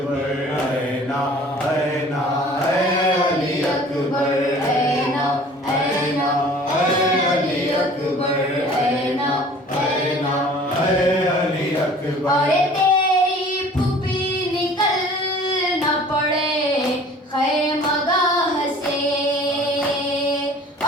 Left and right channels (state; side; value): normal; both; correlation 0.48